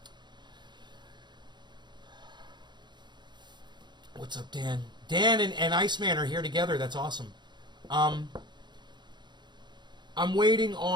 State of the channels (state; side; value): late; left; 0.21 ms